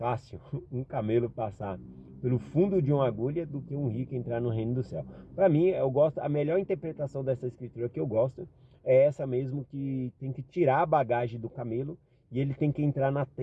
um camelo passar pelo fundo de uma agulha do que um rico entrar no reino do céu. Para mim, eu gosto, a melhor interpretação dessa escritura que eu gosto é essa mesmo, que tem que tirar a bagagem do camelo e ele tem que entrar na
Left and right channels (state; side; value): identical; both; correlation 1.00